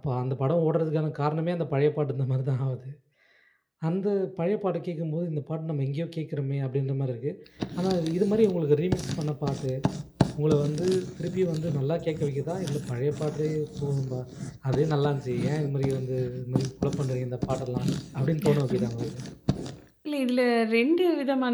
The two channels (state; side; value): identical; both; correlation 1.00